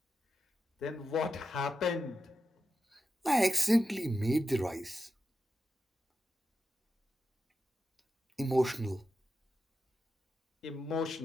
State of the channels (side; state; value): both; normal; correlation 0.90